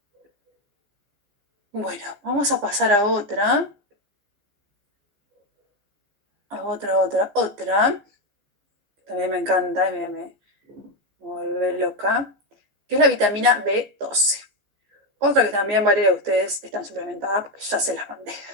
Bueno, vamos a pasar a otra, otra. También me encanta y me vuelve loca, que es la vitamina B12. Otra que también varios de ustedes están suplementadas porque ya se las mandé.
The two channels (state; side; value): late; left; 15 ms